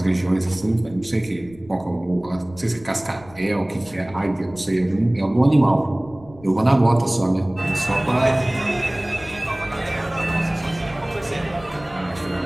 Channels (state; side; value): noise; left; rumble, 21 dB below the sound